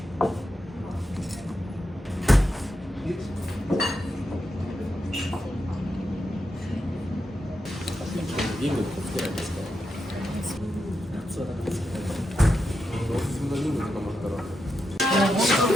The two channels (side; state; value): both; normal; correlation 0.86